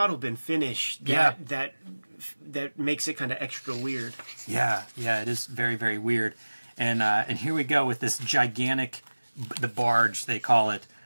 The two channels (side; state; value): both; inverted; correlation -1.00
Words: finish that makes it kind of extra weird. Yeah, it is very, very weird. And here we go with this gigantic, the barge they call it.